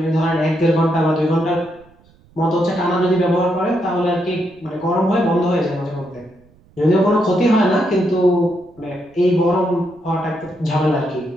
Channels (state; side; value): noise; right; rumble, 30 dB below the sound